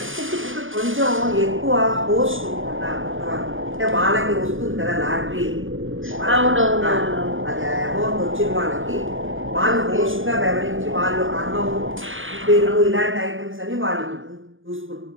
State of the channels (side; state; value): left; late; 0.58 ms